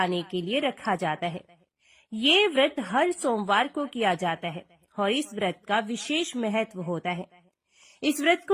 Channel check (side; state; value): both; identical; correlation 1.00